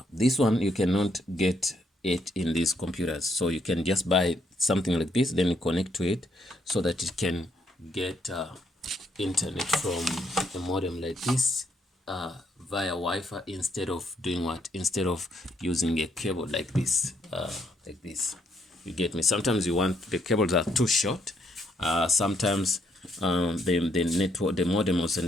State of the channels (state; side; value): normal; both; correlation 0.72